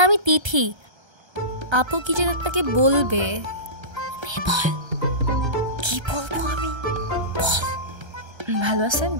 আমি তিথি। আপু কি যেন আপনাকে বলবে। বল। কি বলবো আমি? বল। ভালো আছেন?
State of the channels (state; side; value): late; left; 1.3 ms